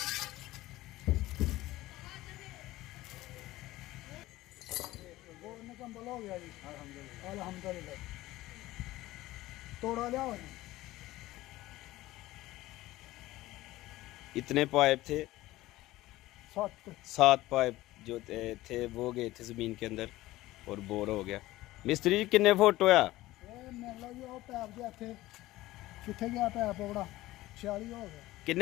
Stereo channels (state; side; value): quieter; right; 17.2 dB